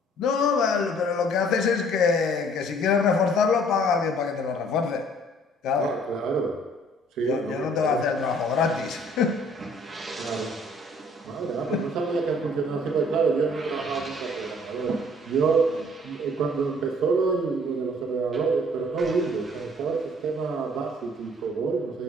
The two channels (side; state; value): both; normal; correlation 0.58